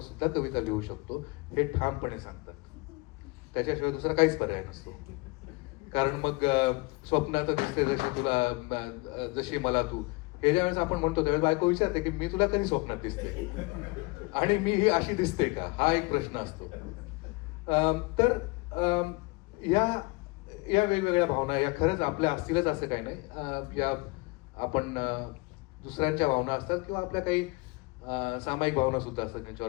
सुद्धा कविता लिहू शकतो हे ठामपणे सांगतात. त्याच्याशिवाय दुसरा काहीच पर्याय नसतो. कारण मग स्वप्नात दिसते जशी तुला, जशी मला तू, हे ज्यावेळेस आपण म्हणतो त्यावेळेस बायको विचारते की मी तुला कधी स्वप्नात दिसते आणि मी ही अशी दिसते का, हा एक प्रश्न असतो. तर या वेगवेगळ्या भावना या खरंच आपल्या असतीलच असं काही नाही. या आपण दुसऱ्यांच्या भावना असतात किंवा आपल्या काही सामायिक भावना सुद्धा असतात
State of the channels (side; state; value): right; quieter; 26.1 dB